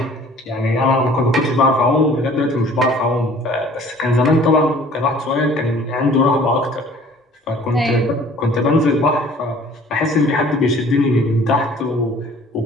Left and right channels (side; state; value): both; normal; correlation 0.52